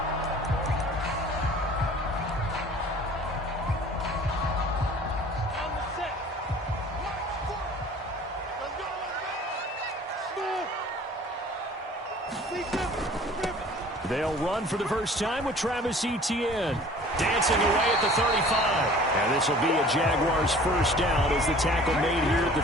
They'll run for the first time with Travis Etienne. Dancing away at the 35. And this will be a Jaguars first down as the tackle made here at the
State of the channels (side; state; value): both; normal; correlation 0.48